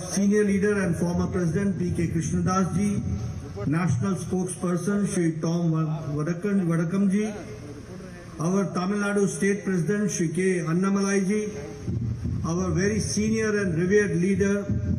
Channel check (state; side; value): identical; both; correlation 1.00